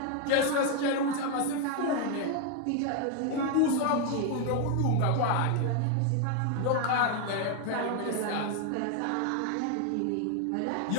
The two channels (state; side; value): different; both; correlation 0.01